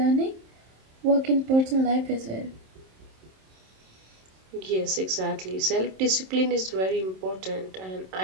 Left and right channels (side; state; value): left; late; 27 ms